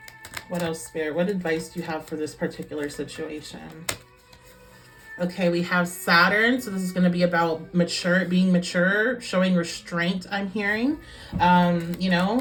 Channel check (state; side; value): identical; both; correlation 1.00